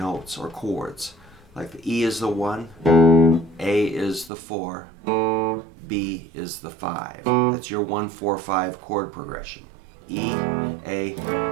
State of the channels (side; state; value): left; drops out; at 4.3 s